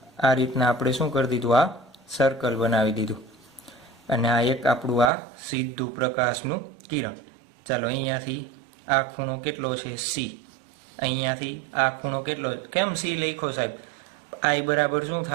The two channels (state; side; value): drops out; left; at 5.1 s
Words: આ રીતના આપણે શું કરી દીધું, આ સર્કલ બનાવી દીધું, અને આ એક આપણું આ સીધું પ્રકાશનું કિરણ. ચાલો અહીંયાથી આ ખૂણો કેટલો છે, સી. અહીંયાથી આ ખૂણો કેટલો, કેમ સી લખ્યો સાહેબ, આઈ બરાબર શું